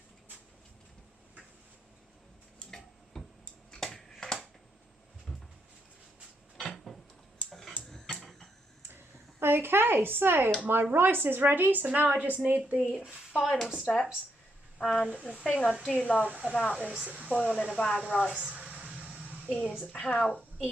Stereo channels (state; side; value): normal; both; correlation 0.79